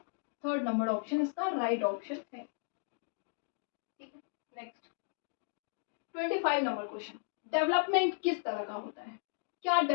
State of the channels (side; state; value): right; silent; digital silence